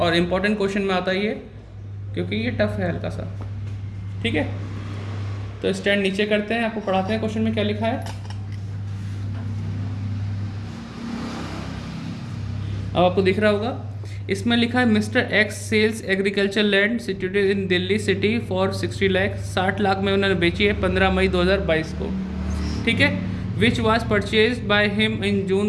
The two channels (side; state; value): both; identical; correlation 1.00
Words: इम्पॉर्टेंट क्वेश्चन में आता है ये, क्योंकि ये टफ है हल्का सा। ठीक है, तो स्टैंड नीचे करते हैं, आपको पढ़ाते हैं क्वेश्चन में क्या लिखा है। अब आपको दिख रहा होगा, इसमें लिखा है mister X sells agriculture land situated in Delhi city for 60 lakh. 60 lakh में उन्होंने बेची है 15 मई 2022 को। ठीक है, which was purchase by him in